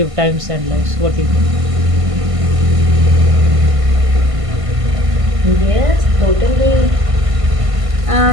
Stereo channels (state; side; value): late; left; 1.5 ms